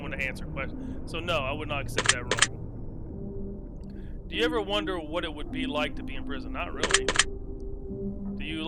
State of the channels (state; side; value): identical; both; correlation 1.00